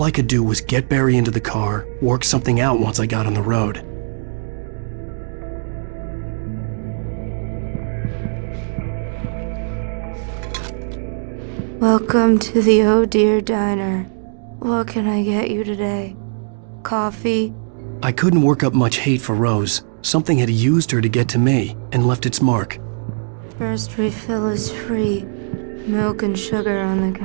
I could do was get Barry into the car, work something out once I got on the road. Welcome to the Oh Dear Diner. What can I get you today? Coffee? I couldn't work up much hate for Rose. Something had used her to get to me and left its mark. First refill is free. Milk and sugar on the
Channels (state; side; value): silent; left; digital silence